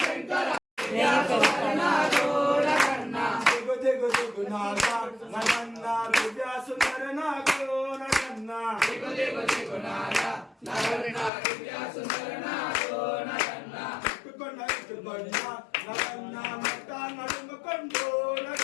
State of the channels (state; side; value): drops out; right; at 11.3 s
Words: శంకర దిగు దిగు దిగు నాథ నగన్న దివ్య సుందర నాగో నగన్న దిగు దిగు దిగు నాద నగన్న దివ్య సుందర నాదో నగన్న ఇటుకొండ ఇటుకొండ నగన్న నట నడుముకొండు